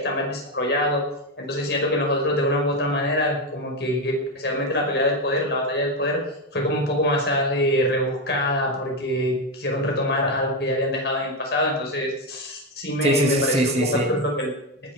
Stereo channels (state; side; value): normal; both; correlation 0.11